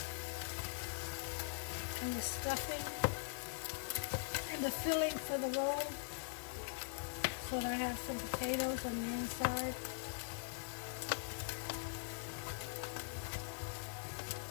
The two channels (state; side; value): silent; right; digital silence